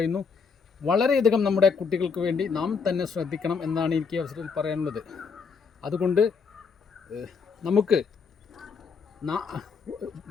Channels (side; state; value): right; quieter; 5.4 dB